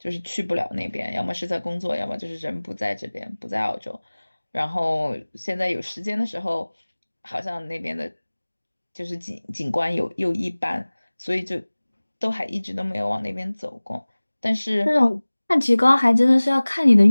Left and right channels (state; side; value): inverted; both; correlation -1.00